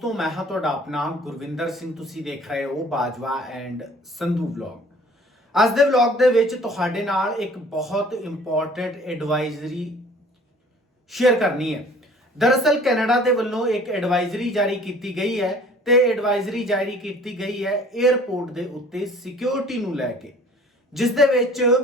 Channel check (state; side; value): normal; both; correlation 0.51